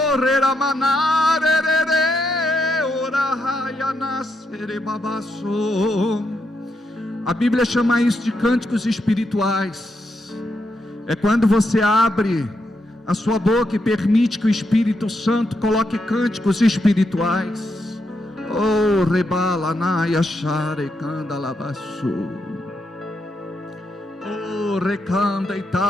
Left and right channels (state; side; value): normal; both; correlation 0.81